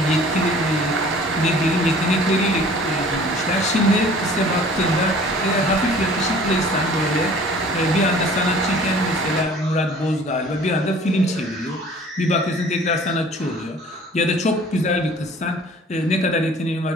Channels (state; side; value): normal; both; correlation 0.49